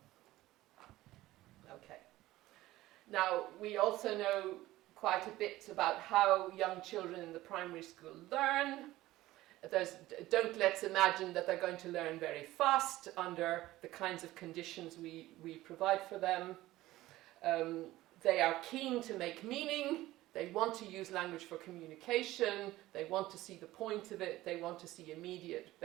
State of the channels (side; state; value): left; quieter; 16.7 dB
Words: Okay. Now, we also know quite a bit about how young children in the primary school learn. Don't let's imagine that they're going to learn very fast under the kinds of conditions we provide for them. They are keen to make meaning. They want to use language for communication. They want to see the point of it. They want to see immediate